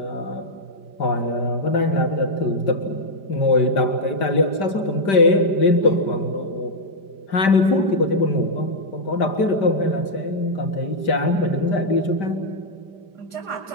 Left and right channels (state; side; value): late; right; 5.1 ms